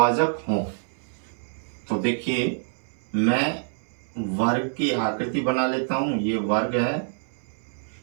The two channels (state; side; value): silent; left; 61 dB below the other